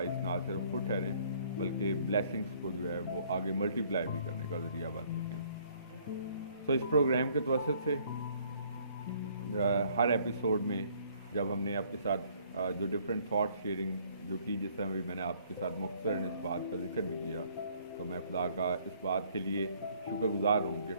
ना सिर्फ खुद ठहरें बल्कि ब्लेसिंग्स को जो है वो आगे मल्टीप्लाई भी करने का ज़रिया बन सकें। तो इस प्रोग्राम के तवसत से हर एपिसोड में जब हमने आपके साथ जो डिफरेंट थॉट शेयरिंग जो की, जिस तरह भी मैंने आपके साथ मुख्तसरन इस बात का जिक्र भी किया, तो मैं खुदा का इस बात के लिए शुक्रगुजार हूँ कि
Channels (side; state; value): both; inverted; correlation -0.62